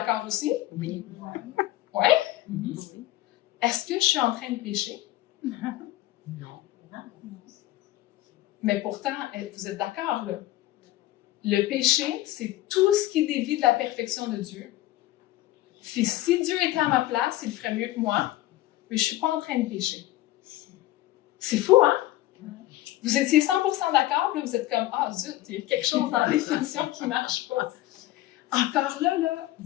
aussi? Oui. Oui? Est-ce que je suis en train de pécher? Non. Mais pourtant, vous êtes d'accord, là? Le péché, c'est tout ce qui dévie de la perfection de Dieu. Puis si Dieu était à ma place, il ferait mieux que moi, mais je ne suis pas en train de pécher. C'est fou, hein? Vous étiez 100% d'accord, puis vous êtes comme « Ah, zut, il y a quelque chose dans la définition qui ne marche pas. » Encore là,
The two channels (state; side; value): quieter; right; 15.7 dB